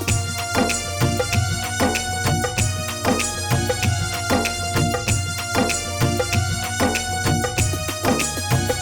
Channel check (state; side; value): identical; both; correlation 1.00